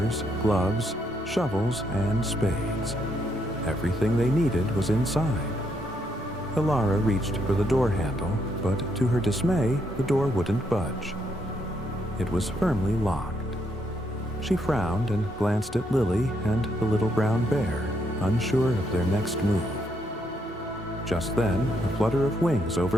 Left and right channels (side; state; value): both; normal; correlation 0.75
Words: gloves, shovels, and spades. Everything they needed was inside. Elara reached for the door handle, but to her dismay, the door wouldn't budge. It was firmly locked. She frowned and glanced at Lily and the little brown bear, unsure of their next move. Just then, a flutter of wings